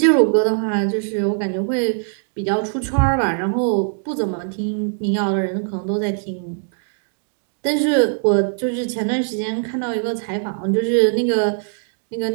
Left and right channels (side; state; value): left; silent; digital silence